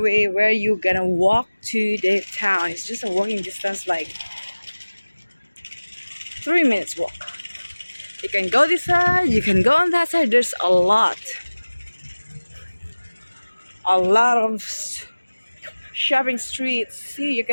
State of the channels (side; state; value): both; inverted; correlation -1.00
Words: where you gonna walk to the town. It's just a walking distance, like 3 minutes walk. You can go this side, you can go on that side. There's a lot of shopping streets. See, you